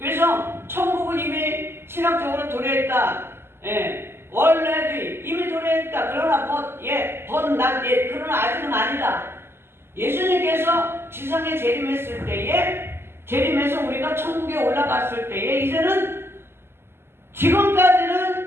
천국은 이미 신학적으로 도래했다. 원래도 이미 도래했다. 그러나 그러나 아직은 아니다. 예수님께서 지상에 재림해서 우리가 천국에 올라갔을 때에 이제는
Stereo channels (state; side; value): late; left; 0.12 ms